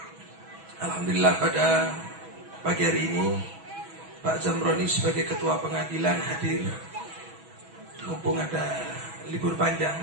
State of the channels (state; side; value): late; left; 6.1 ms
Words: Alhamdulillah pada pagi hari ini Pak Zamroni sebagai ketua pengadilan hadir, mumpung ada libur panjang,